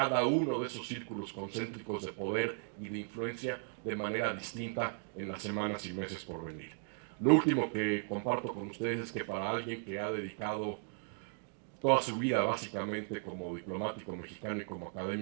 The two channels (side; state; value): left; silent; 53 dB below the other